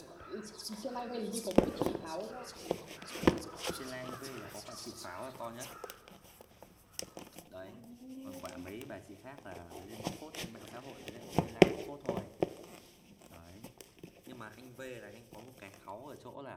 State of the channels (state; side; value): identical; both; correlation 1.00